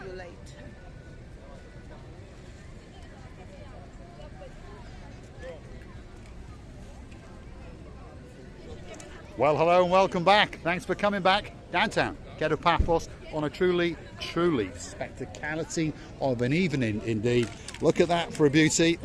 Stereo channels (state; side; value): identical; both; correlation 1.00